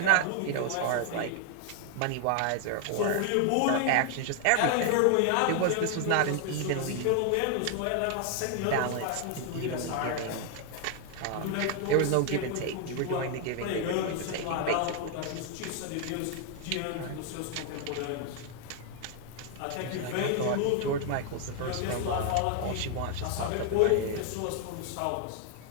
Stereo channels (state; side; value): different; both; correlation 0.00